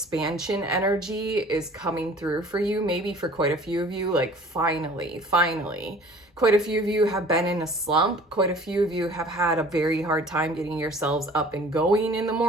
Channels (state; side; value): normal; both; correlation 0.49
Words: energy is coming through for you. Maybe for quite a few of you, like finally. Quite a few of you have been in a slump. Quite a few of you have had a very hard time getting yourselves up and going in the